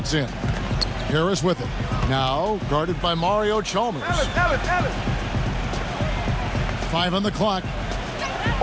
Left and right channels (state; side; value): identical; both; correlation 1.00